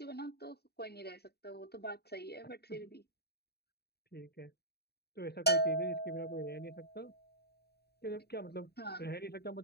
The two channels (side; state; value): right; late; 0.47 ms